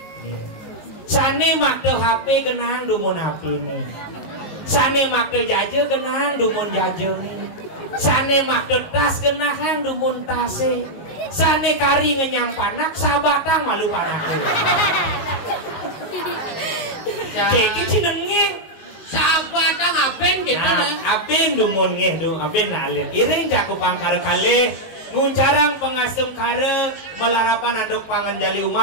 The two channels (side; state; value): right; late; 18 ms